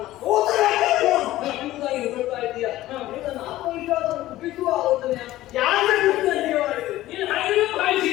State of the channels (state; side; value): quieter; right; 15.6 dB